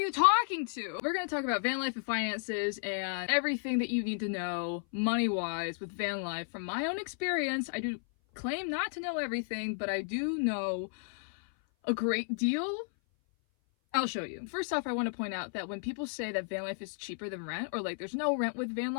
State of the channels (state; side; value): silent; right; 56 dB below the other